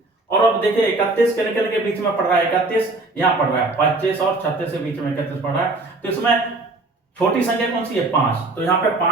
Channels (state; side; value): quieter; left; 3.1 dB